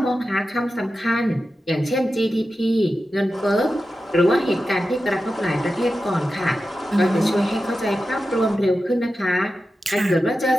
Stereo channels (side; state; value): both; normal; correlation 0.92